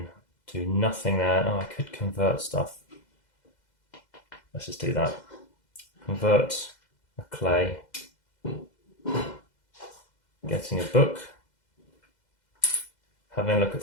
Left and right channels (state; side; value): late; right; 2.0 ms